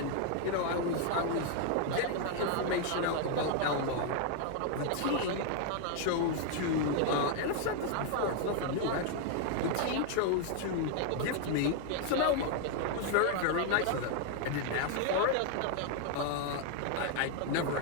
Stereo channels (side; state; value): both; different; correlation 0.00